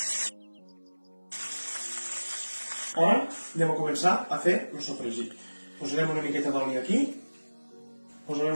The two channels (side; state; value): both; inverted; correlation -1.00